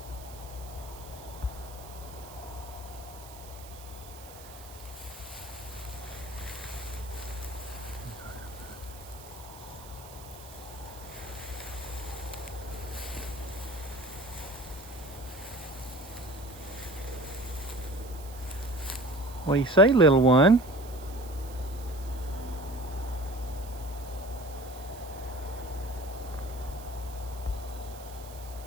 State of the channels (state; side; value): noise; right; hiss, 18 dB below the sound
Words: What do you say, little one?